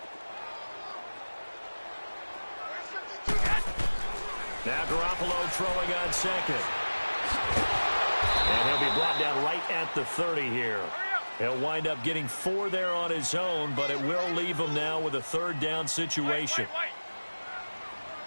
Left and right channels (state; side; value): inverted; both; correlation -1.00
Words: Now Garoppolo throwing on 2nd. And he'll be brought down right at the 30 here. He'll wind up getting 4 there on his own, but it will leave him now with a 3rd down situation.